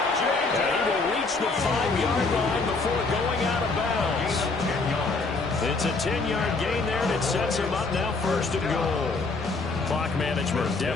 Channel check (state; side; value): quieter; right; 3.8 dB